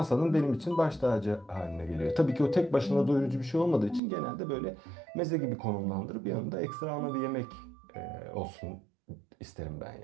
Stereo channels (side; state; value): left; drops out; at 4.0 s